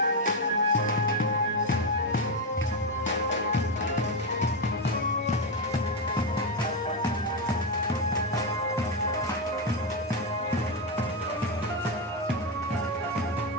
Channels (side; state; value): both; normal; correlation 0.08